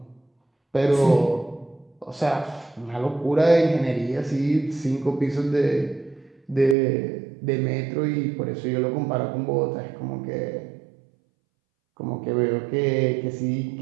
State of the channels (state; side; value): drops out; left; at 6.8 s